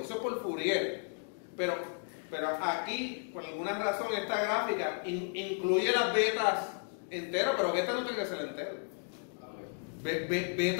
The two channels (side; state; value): right; silent; 55 dB below the other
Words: eso es por Fourier, pero aquí, por alguna razón, esta gráfica incluye las betas enteras, pero beta no tiene que ser entero.